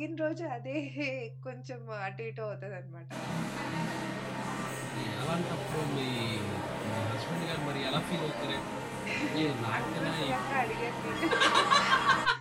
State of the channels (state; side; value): identical; both; correlation 1.00